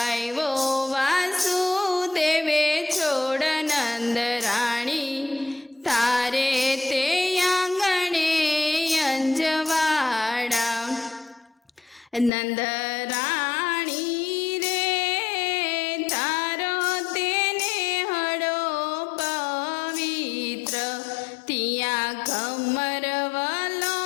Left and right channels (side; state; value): right; drops out; at 12.3 s